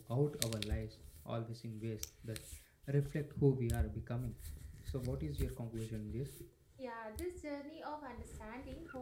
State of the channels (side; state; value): both; identical; correlation 1.00